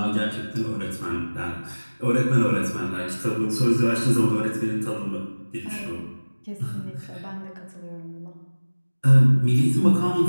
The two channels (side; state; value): both; inverted; correlation -1.00